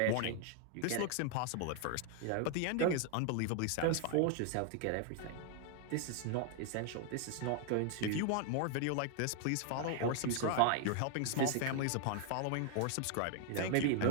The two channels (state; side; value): different; both; correlation 0.00